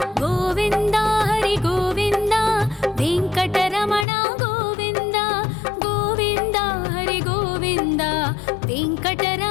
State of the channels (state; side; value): drops out; right; at 4.0 s